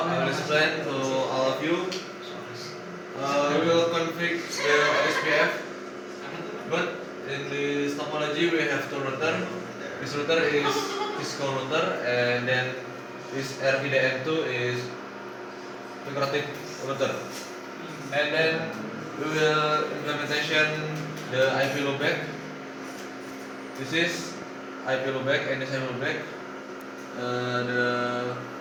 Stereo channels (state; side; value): identical; both; correlation 1.00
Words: I will explain to all of you. We will config the SPF, but in this topology we have two router. This router is Cisco router, and then this RIDN2 is integrated router. And then we will implementation the IP loopback. This is IP loopback and this IP loopback.